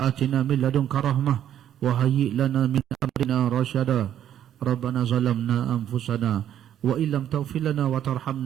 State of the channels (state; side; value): quieter; left; 10.6 dB